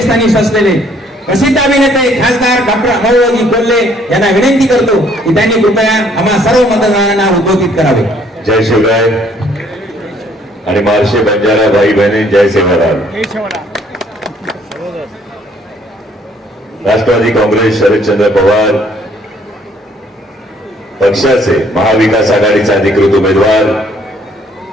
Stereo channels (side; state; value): both; normal; correlation 0.63